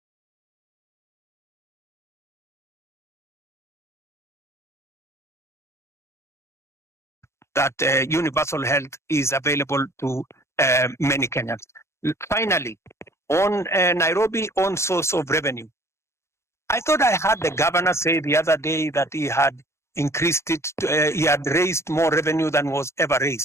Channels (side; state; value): right; late; 0.13 ms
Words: that universal health is available to many Kenyans. Finally, on Nairobi own source of revenue, I thought I heard the governor say the other day that he had increased it, he had raised more revenue than was ever